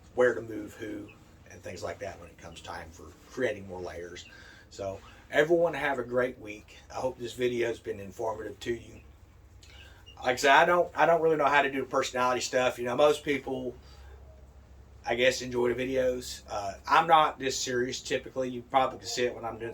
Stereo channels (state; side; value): identical; both; correlation 1.00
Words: where to move who and things like that when it comes time for creating more layers. So everyone have a great week. I hope this video has been informative to you. Like I said, I don't really know how to do personality stuff. You know, most people, I guess, enjoy the videos. I'm not this serious typically. You probably can see it when I'm doing